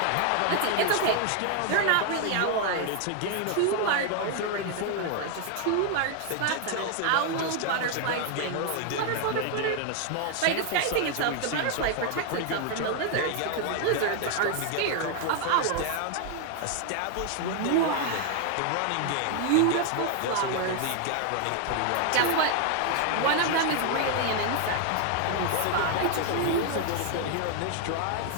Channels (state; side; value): different; both; correlation 0.00